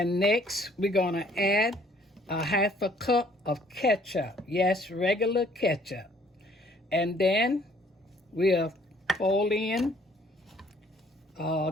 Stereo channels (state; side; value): normal; both; correlation 0.60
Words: next, we're going to add a half a cup of ketchup. Yes, regular ketchup. And then we'll fold in